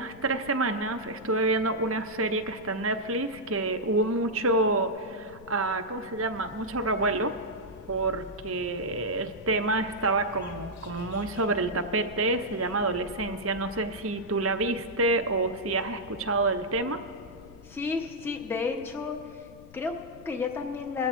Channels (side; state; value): left; noise; rumble, 21 dB below the sound